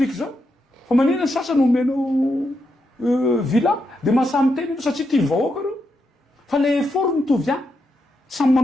zao fa maninona ny sasany omenao villa de mahasamy teny ianao satria tia vahoaka reo fa le effort mitovy ihany samy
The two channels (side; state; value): both; normal; correlation 0.83